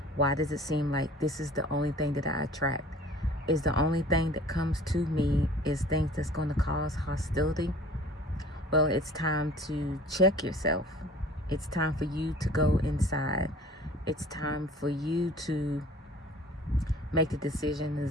why does it seem like this is the only thing that I attract? Is the only thing that comes to me is things that's going to cause hostility? Well, it's time to check yourself. It's time for you to go inside. It's time for you to make the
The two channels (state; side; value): normal; both; correlation 0.48